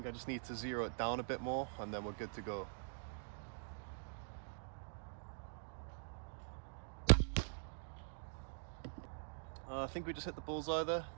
I just need to zero it down a bit more and then we're good to go. I think we just hit the bullseye there.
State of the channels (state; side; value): silent; left; digital silence